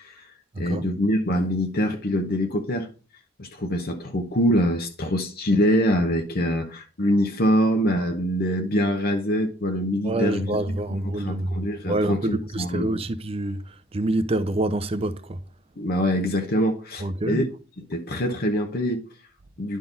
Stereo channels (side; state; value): both; normal; correlation 0.59